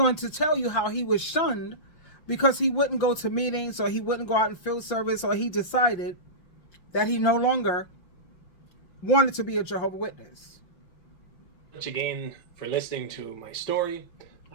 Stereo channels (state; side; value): late; right; 5.8 ms